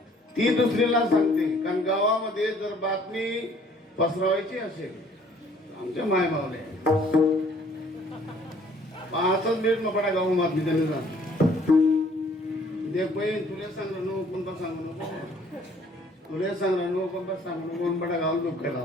ती दुसरीला सांगते, कारण गावामध्ये जर बातमी पसरवायची असेल आमच्या माय मावले पाहतच मिनिट मपडा गाव बातमी त्यांनी सांग देख बहीण तुला सांगलं नको कोणता सांगू नको, तुला सांगलं नको कोणता सांगू नको, कोणपडा गाव दुःख केला.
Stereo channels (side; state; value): both; normal; correlation 0.59